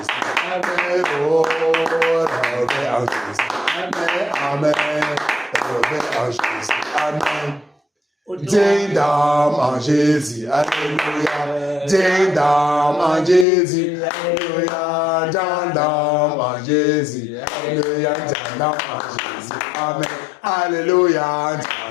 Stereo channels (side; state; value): right; drops out; at 13.5 s